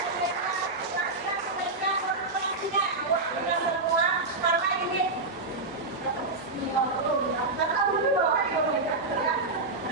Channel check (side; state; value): left; quieter; 3.3 dB